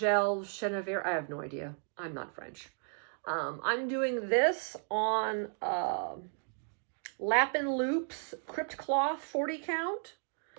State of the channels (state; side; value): silent; left; 55 dB below the other